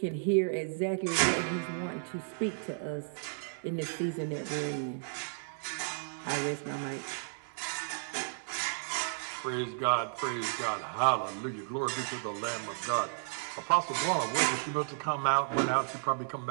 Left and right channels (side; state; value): left; silent; digital silence